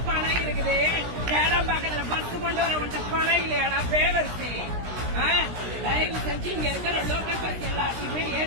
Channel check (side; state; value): left; late; 16 ms